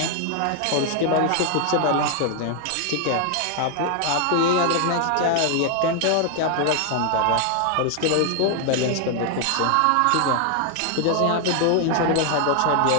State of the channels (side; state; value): both; different; correlation 0.00